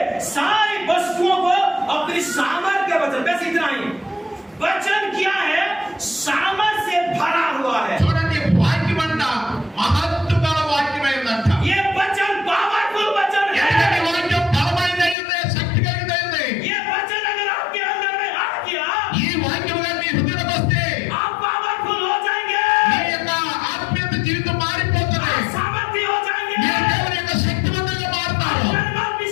सारी वस्तुओं को अपनी सामर्थ्य के वचन, बस इतना ही। वचन क्या है? सामर्थ्य से भरा हुआ है। చూడండి, వాక్యం అంట మహత్తు గల వాక్యమైందంట. ये वचन पावरफुल वचन ఎందుకంటే है। వాక్యం బలమైనది, శక్తి కలిగినది. ये वचन अगर आपके अंदर में आ गया, ఈ వాక్యం గాని మీ హృదయంలోకి వస్తే आप पावरफुल हो जाएंगे, మీ యొక్క ఆత్మీయ జీవితం మారిపోతుంది. आप सामर्थ्य हो जाएंगे, మీరు దేవుని యొక్క శక్తివంతంగా మారుతారు. आप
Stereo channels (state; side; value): drops out; right; at 15.2 s